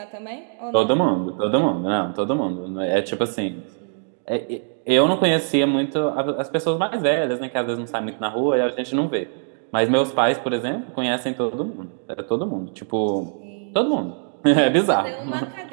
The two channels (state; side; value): silent; left; 64 dB below the other